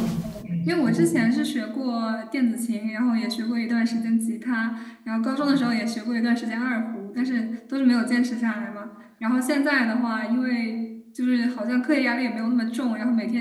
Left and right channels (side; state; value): both; identical; correlation 1.00